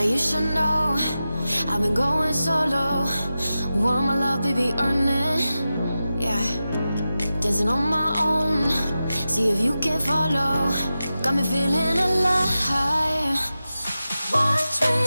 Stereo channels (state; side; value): inverted; both; correlation -0.93